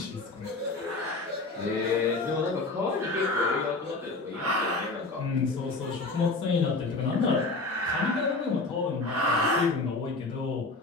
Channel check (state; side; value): quieter; right; 3.4 dB